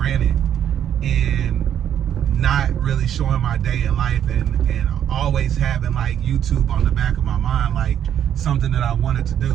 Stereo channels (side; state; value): left; quieter; 9.8 dB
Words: and not really showing my day in life, and always having like YouTube on the back of my mind, like something that I wanted to